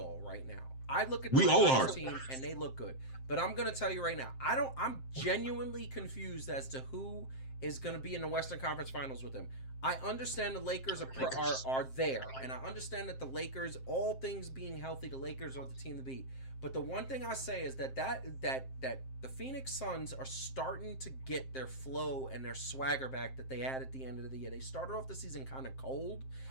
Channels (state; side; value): late; right; 7.6 ms